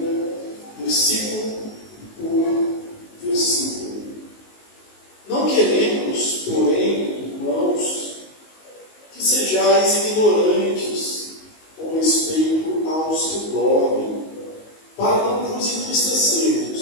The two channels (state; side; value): late; right; 19 ms